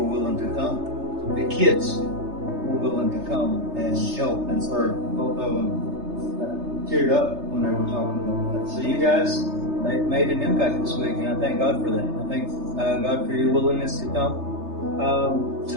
willing to come. The kids were willing to come and help and serve. Both of them teared up when they were talking about that. So you guys made an impact this week, and I thank God for that. I thank God for your willingness to come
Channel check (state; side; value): late; left; 3.3 ms